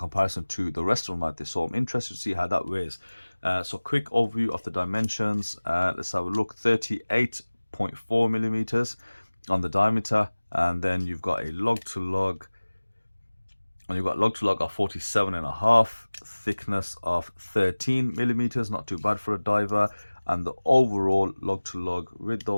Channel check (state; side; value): inverted; both; correlation -1.00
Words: to the rest of them out there, so I'm interested to see how that weighs. So quick overview of the dimensions. Let's have a look. 38.4 millimeters on the diameter, and then you've got a lug to lug, and you've got lug to lug of 47.5, thickness of 13 millimeters, not too bad for a diver, and the overall lug to lug with